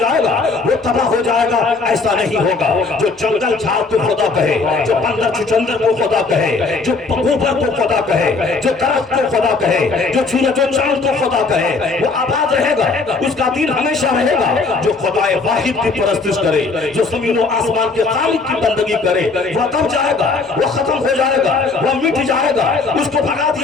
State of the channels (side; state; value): right; quieter; 4.0 dB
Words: گا، وہ تباہ ہو جائے گا۔ ایسا نہیں ہوگا، جو جنگل جھاڑ کو خدا کہے، جو بندر چھچندر کو خدا کہے، جو پگوبر کو خدا کہے، جو درخت کو خدا کہے، جو سورج و چاند کو خدا کہے، وہ آباد رہے گا، اس کا دین ہمیشہ رہے گا۔ جو خدائے واحد کی پرستش کرے، جو زمین و آسمان کے خالق کی بندگی کرے، وہ دب جائے گا، وہ ختم ہو جائے گا، وہ مٹ جائے گا، اس کو بھگا